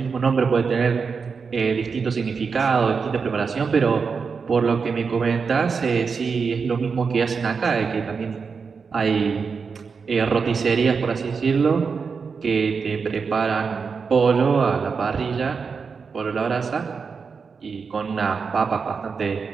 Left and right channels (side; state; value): left; quieter; 5.4 dB